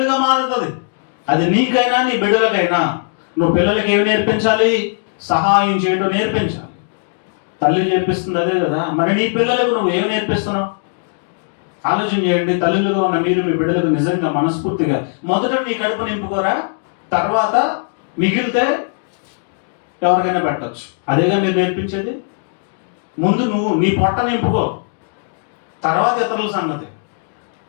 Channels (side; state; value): right; silent; digital silence